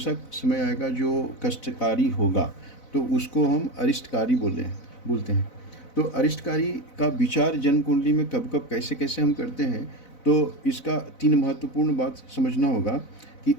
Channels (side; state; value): right; late; 4.0 ms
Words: समय आएगा जो कष्टकारी होगा, तो उसको हम अरिष्टकारी बोलते हैं। तो अरिष्टकारी का विचार जन्म कुंडली में कब कब कैसे कैसे हम करते हैं, तो इसका 3 महत्वपूर्ण बात समझना होगा कि